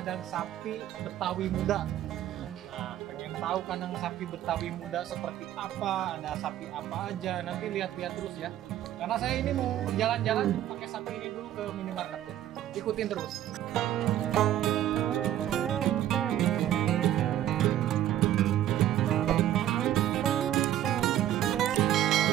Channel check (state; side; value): quieter; left; 12.2 dB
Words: sapi Betawi Muda. Nah, pengen tahu kandang sapi Betawi Muda seperti apa, ada sapi apa aja, nanti lihat-lihat terus ya. Karena saya ini mau jalan-jalan pakai sapi ini dulu ke minimarket ya. Ikutin terus.